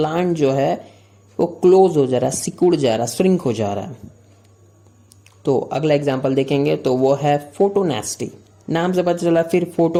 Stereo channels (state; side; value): identical; both; correlation 1.00